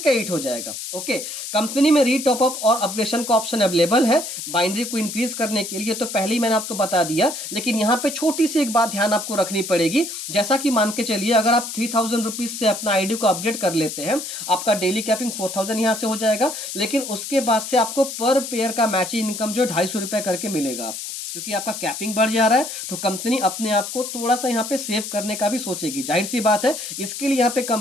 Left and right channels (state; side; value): noise; left; hiss, 7 dB below the sound